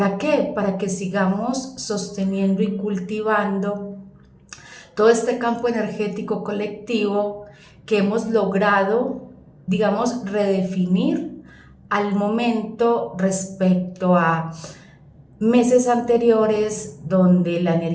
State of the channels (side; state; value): both; identical; correlation 1.00